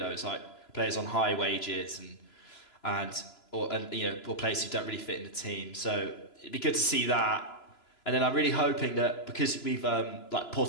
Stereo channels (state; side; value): late; right; 3.0 ms